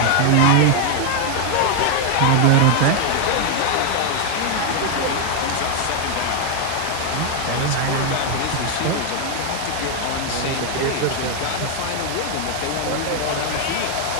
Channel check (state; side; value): different; both; correlation 0.00